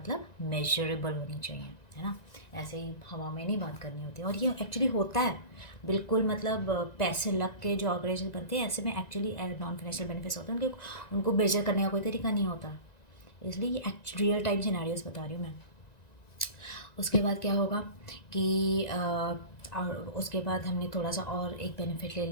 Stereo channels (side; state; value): right; late; 1.9 ms